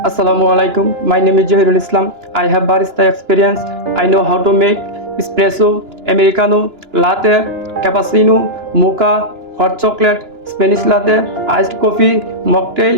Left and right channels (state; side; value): late; left; 2.9 ms